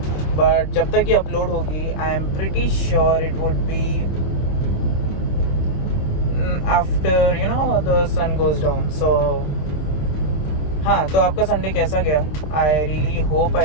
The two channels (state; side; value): late; right; 26 ms